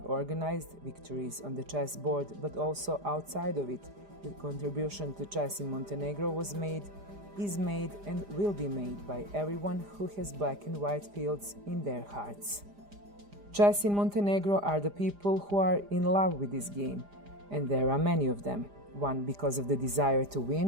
organized, victories on the chessboard, but also outside of it, the contribution to chess in Montenegro was made, is made, and will be made by everyone who has black and white fields in their hearts. Chess in Montenegro are the people who are in love with this game, and there are many of them, one because of the desire to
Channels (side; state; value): left; late; 4.9 ms